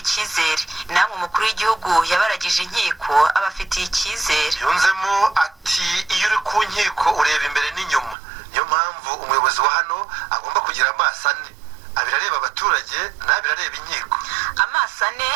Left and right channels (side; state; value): left; drops out; at 8.2 s